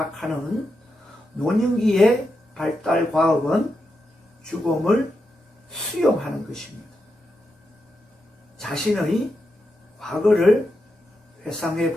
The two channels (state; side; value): normal; both; correlation 0.86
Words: 노년기의 발달 과업은 죽음을 수용하는 것입니다. 자신의 과거를 회상해